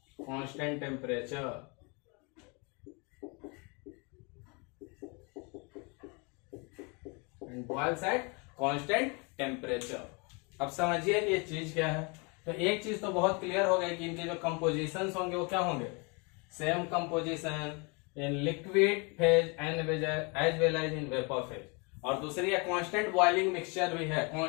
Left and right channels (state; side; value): quieter; right; 31.5 dB